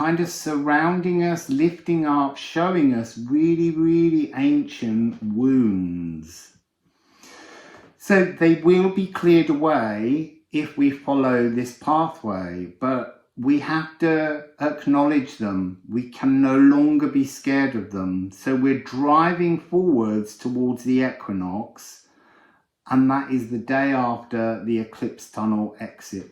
of surrounding us, lifting up, showing us really, really ancient wounds. So they will be cleared away if we follow this pathway, but we have to acknowledge them. We can no longer be scared of them. So we're driving forwards towards the equinox, and that is the day after the eclipse tunnel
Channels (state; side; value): identical; both; correlation 1.00